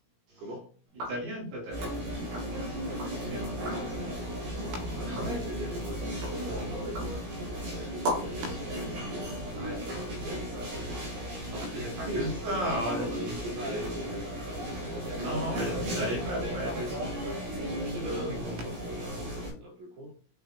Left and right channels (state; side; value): late; left; 17 ms